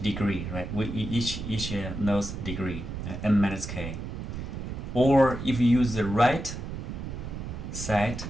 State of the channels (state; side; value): noise; right; rumble, 7 dB below the sound